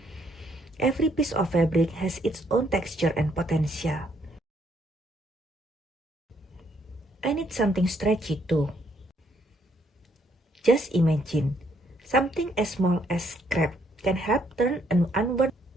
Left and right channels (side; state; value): both; normal; correlation 0.70